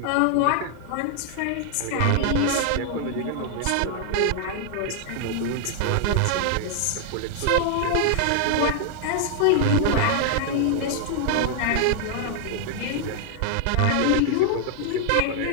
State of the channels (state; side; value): different; both; correlation 0.00